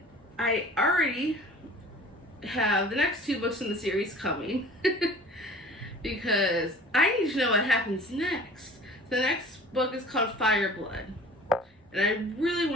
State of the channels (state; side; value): normal; both; correlation 0.45